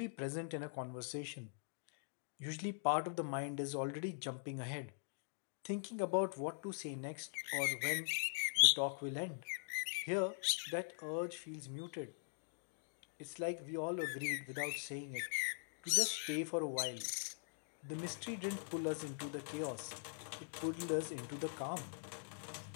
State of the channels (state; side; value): silent; right; digital silence